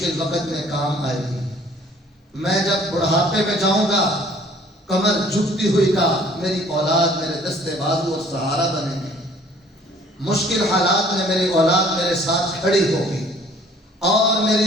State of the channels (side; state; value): both; normal; correlation 0.55